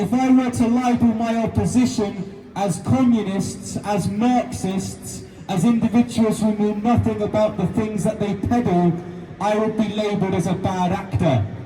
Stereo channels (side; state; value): both; identical; correlation 1.00